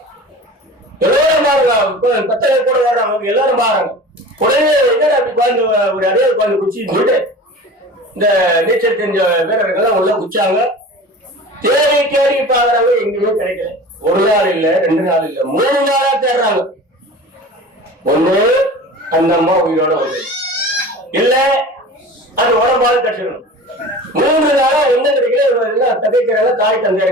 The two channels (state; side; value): normal; both; correlation 0.37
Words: எல்லாரும் பாருங்க, பத்தனை கூட வர்றாங்க, எல்லாரும் பாருங்க. உடனே அப்படி குழந்தை ஒரு அடையாள குழந்தை குச்சின்னு சொல்லிட்டு இந்த நீச்சல் தெரிஞ்ச வீரர்கள் உள்ள குச்சாங்க. தேடி தேடி பாக்குறாங்க, எங்கேயுமே கிடைக்கல. ஒரு நாள் இல்ல, 2 நாள் இல்ல, 3 நாளா தேடுறாங்க. ஒண்ணு அந்த அம்மா உயிரோட வந்து இல்ல அது உடம்பாடு கட்டிடணும். 3 நாளா என்ன கிடைக்கல, தகைக்கிறாங்க. தாய் தந்தை